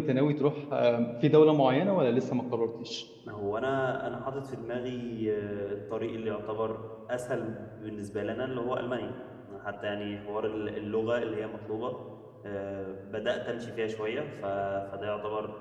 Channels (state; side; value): identical; both; correlation 1.00